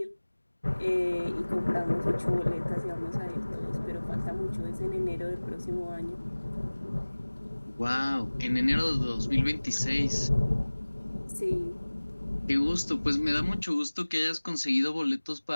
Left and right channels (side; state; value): both; inverted; correlation -1.00